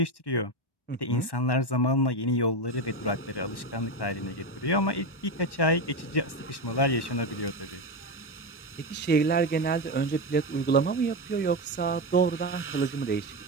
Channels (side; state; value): right; late; 1.1 ms